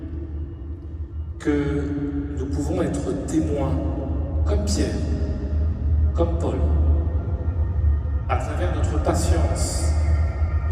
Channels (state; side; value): identical; both; correlation 1.00